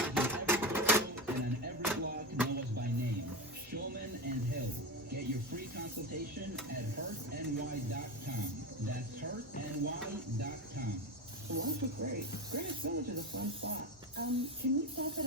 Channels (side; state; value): both; normal; correlation 0.19